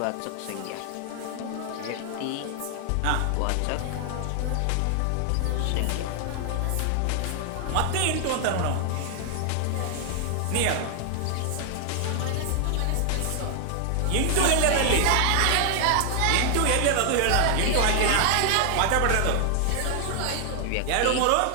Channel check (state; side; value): different; both; correlation 0.00